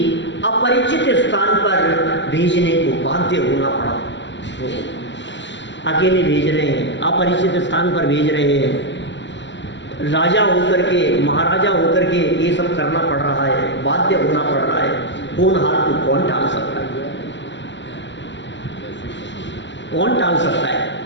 अपरिचित स्थान पर भेजने को बाध्य होना पड़ा। अकेले भेज रहे हैं, अपरिचित स्थान पर भेज रहे हैं। राजा होकर के, महाराजा होकर के ये सब करना पड़ रहा है, बाध्य होना पड़ रहा है। होनहार को कौन टाल सकता है? कौन टाल सकता है?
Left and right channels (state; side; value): late; right; 0.53 ms